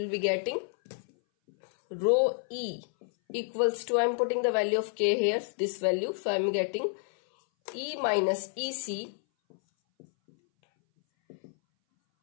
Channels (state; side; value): silent; right; 58 dB below the other